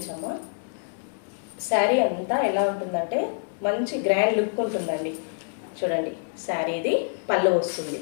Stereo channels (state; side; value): silent; right; digital silence